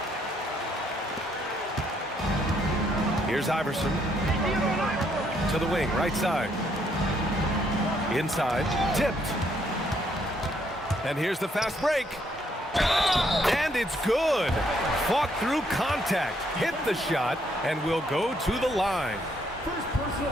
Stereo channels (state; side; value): normal; both; correlation 0.71